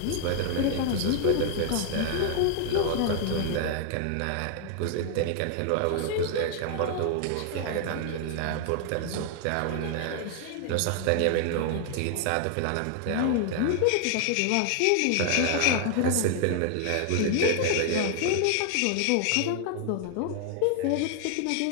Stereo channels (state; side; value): different; both; correlation 0.00